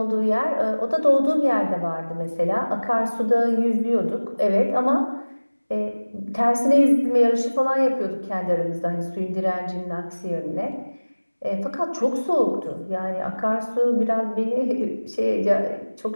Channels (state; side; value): inverted; both; correlation -1.00